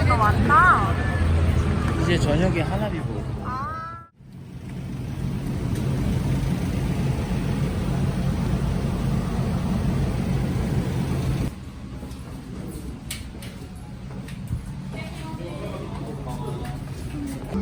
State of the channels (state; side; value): identical; both; correlation 1.00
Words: 많다. 이제 저녁에 하나비 보고.